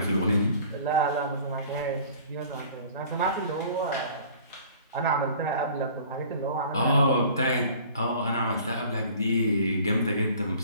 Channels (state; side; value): inverted; both; correlation -0.49